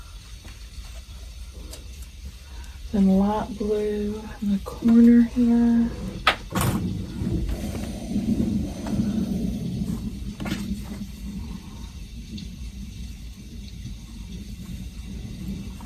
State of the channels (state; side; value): identical; both; correlation 1.00